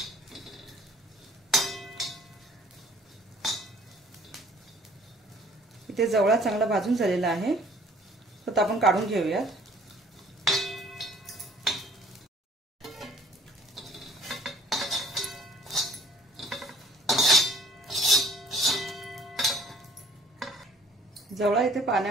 इथे जवळा चांगला भाजून झालेला आहे, तर आपण काढून घेऊयात। जवळा इथे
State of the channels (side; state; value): both; normal; correlation 0.56